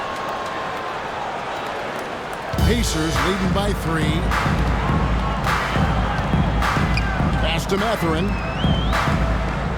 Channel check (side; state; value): both; identical; correlation 1.00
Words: Pacers leading by 3. Pass to Mathurin.